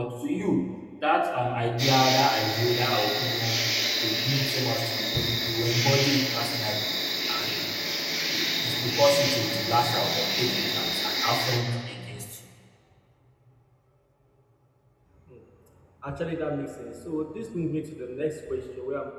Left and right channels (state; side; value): identical; both; correlation 1.00